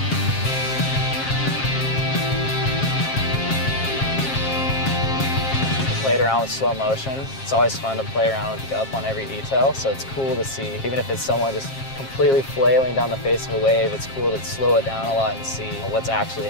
Played around with slow motion. It's always fun to play around with up on every detail, so it's cool to see. Even if it's someone just completely flailing down the face of a wave, it's cool to slow it down a lot and see what's actually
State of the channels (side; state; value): right; late; 7.5 ms